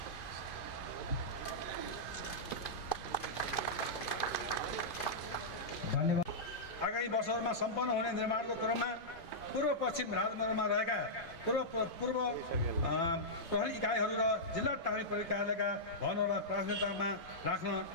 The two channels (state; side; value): late; right; 2.5 ms